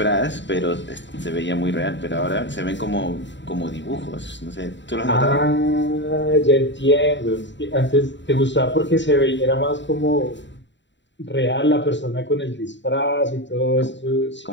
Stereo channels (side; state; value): right; late; 0.53 ms